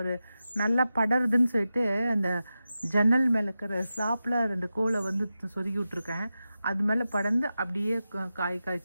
நல்லா படருதுன்னு சொல்லிட்டு அந்த ஜன்னல் மேலே இருக்கிற ஸ்லாப்பில் 2 கோலை வந்து சொருகி விட்ருக்கேன். அது மேலே படர்ந்து அப்படியே காய்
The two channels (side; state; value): both; inverted; correlation -0.92